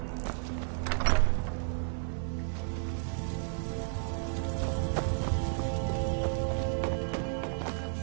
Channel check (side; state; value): left; silent; digital silence